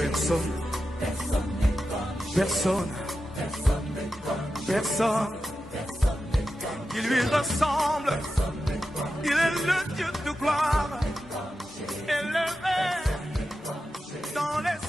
Personne. Personne. Il lui ressemble. Il est le Dieu de gloire. Élevé dans les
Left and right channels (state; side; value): normal; both; correlation 0.90